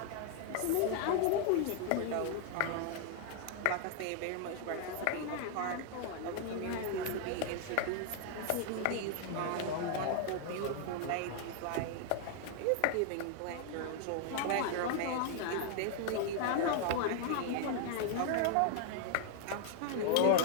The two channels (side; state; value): both; different; correlation 0.00